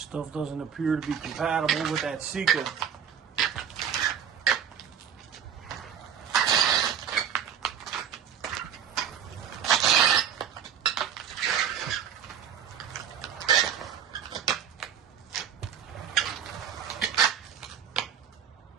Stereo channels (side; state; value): left; quieter; 8.5 dB